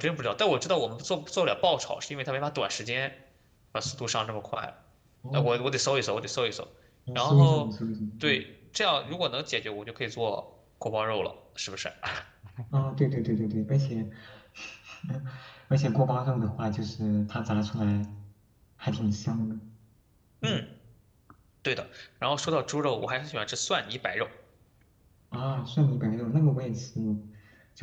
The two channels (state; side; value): identical; both; correlation 1.00